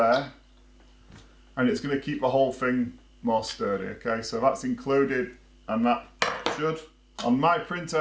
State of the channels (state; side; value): identical; both; correlation 1.00